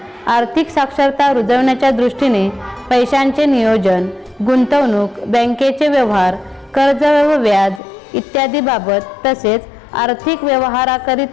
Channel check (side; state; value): right; drops out; at 7.8 s